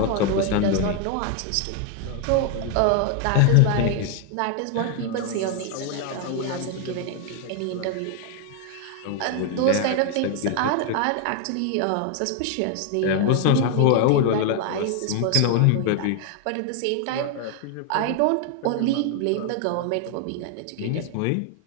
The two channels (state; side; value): different; both; correlation 0.00